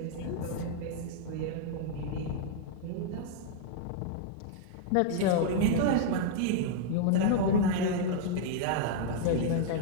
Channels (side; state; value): both; different; correlation 0.00